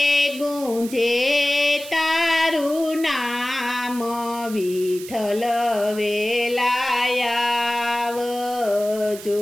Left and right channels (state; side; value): noise; right; hiss, 14 dB below the sound